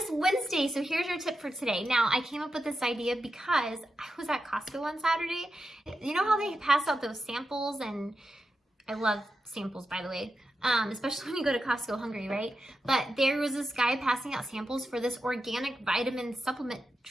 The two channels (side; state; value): both; normal; correlation 0.89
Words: Wednesday, so here's your tip for today. Now, I came up with this idea because I was at Costco on Saturday. You know how they pass out those samples, and I love samples, by the way, especially when you go to Costco hungry, right? But there was this guy passing out samples for this organic vitamin supplement